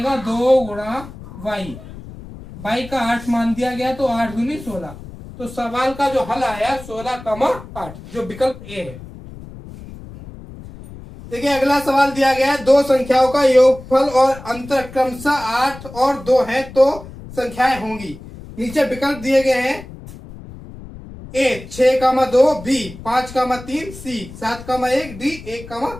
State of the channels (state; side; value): noise; left; rumble, 15 dB below the sound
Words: 2 गुणा y का 8 मान दिया गया, तो 8 दूनी 16। तो सवाल का जो हल आया 16,8, जो विकल्प ए है। देखिए अगला सवाल दिया गया है, दो संख्याओं का योगफल और अंतर क्रमशः 8 और 2 है तो संख्याएं होंगी। नीचे विकल्प दिए गए हैं, ए 6,2, बी 5,3, सी 7,1, डी